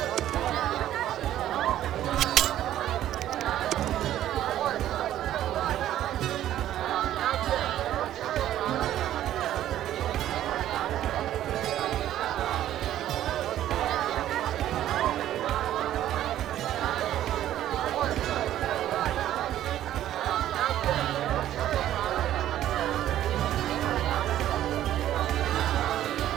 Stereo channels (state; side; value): quieter; left; 12.4 dB